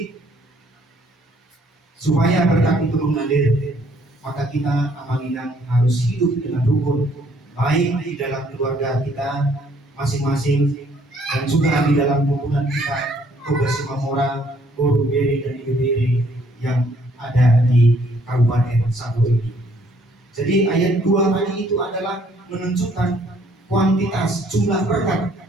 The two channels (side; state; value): both; normal; correlation 0.64